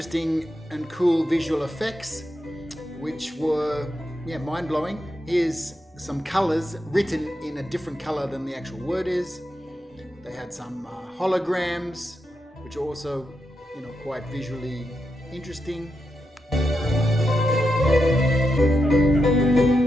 and cool visual effects, which were mind-blowing. Here's some colors written in a different color than the actual word is. They had some holograms, which are also, quite visually interesting.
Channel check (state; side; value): normal; both; correlation 0.85